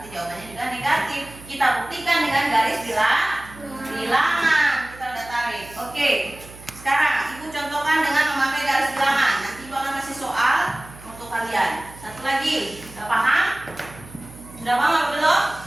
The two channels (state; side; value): noise; right; hum, 19 dB below the sound